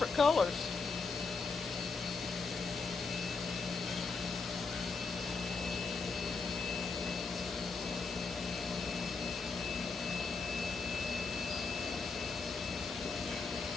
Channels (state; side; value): quieter; right; 4.5 dB